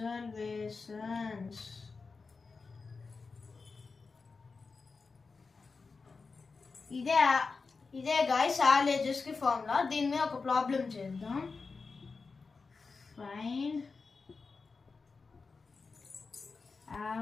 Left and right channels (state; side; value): quieter; right; 4.5 dB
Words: ఇదే గైస్ యావరేజెస్ కి ఫార్ములా. దీని మీద ఒక ప్రాబ్లం చేద్దాం. Find